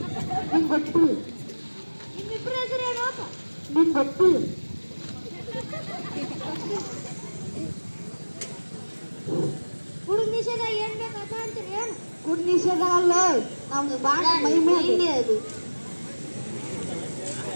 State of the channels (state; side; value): inverted; both; correlation -1.00